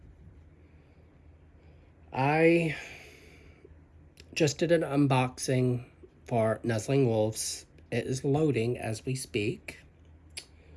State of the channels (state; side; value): identical; both; correlation 1.00